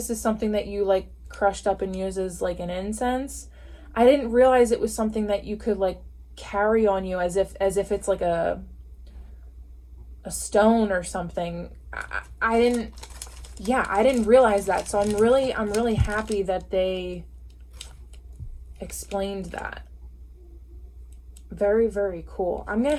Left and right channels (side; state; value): both; identical; correlation 1.00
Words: is something that you like crushed up and use as like an incense. I didn't realize it was something that you could like carry on you as if it's like a a stone or something. I didn't, yeah, I didn't realize that. So I'm really happy that they explained that. Very, very cool. I'm gonna